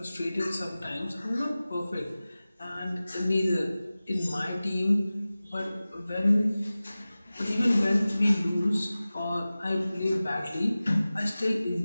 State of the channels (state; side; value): inverted; both; correlation -0.97